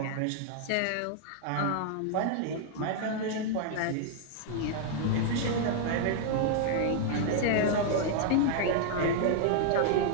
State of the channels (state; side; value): different; both; correlation -0.01